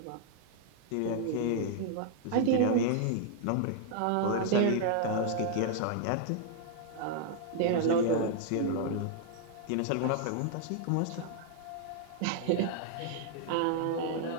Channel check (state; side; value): different; both; correlation 0.00